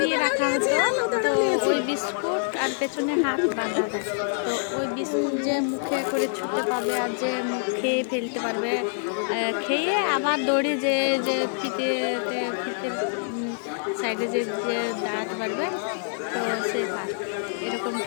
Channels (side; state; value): right; silent; digital silence